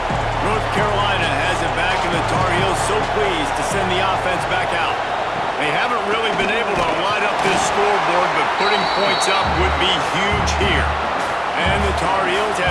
North Carolina has it back, and the Tar Heels so pleased to send the offense back out. They haven't really been able to light up this scoreboard, but putting points up would be huge here. And the Tar Heels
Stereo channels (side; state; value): both; identical; correlation 1.00